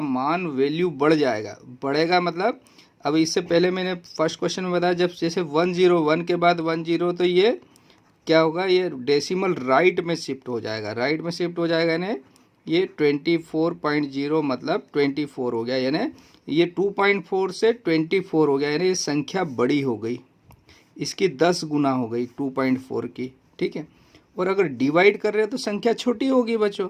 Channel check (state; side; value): identical; both; correlation 1.00